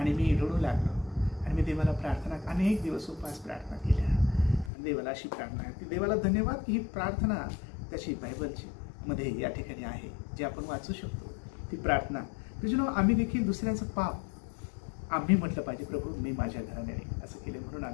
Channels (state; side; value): drops out; right; at 4.7 s